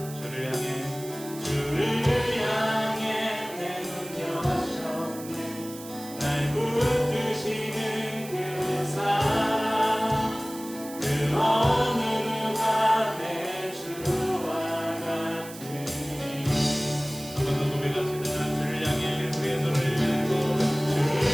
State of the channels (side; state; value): right; noise; hiss, 15 dB below the sound